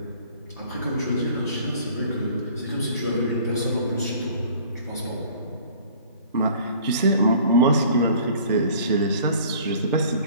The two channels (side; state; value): both; inverted; correlation -0.51